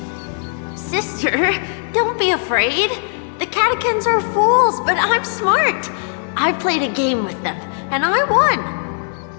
Sister, don't be afraid. The catechins are fools, but I'm smart. I played a game with them, and I won.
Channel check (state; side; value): silent; right; 67 dB below the other